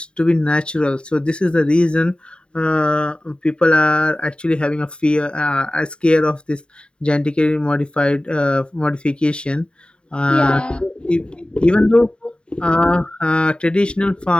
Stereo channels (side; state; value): right; late; 0.052 ms